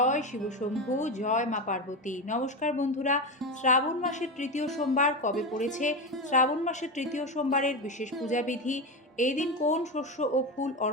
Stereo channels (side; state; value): both; normal; correlation 0.18